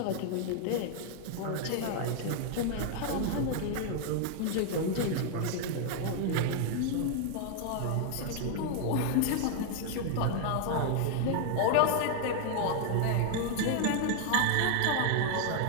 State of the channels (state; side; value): different; both; correlation 0.00